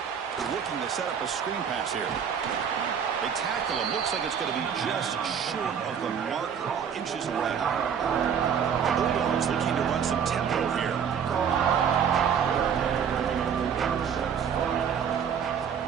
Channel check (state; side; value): quieter; left; 7.6 dB